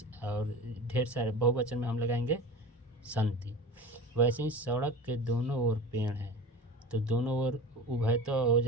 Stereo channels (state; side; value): normal; both; correlation 0.33